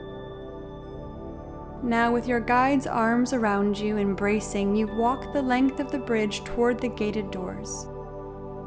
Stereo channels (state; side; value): identical; both; correlation 1.00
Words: Now, with your guide's arms around you, embracing, you walk the length of the bridge toward the gated doors.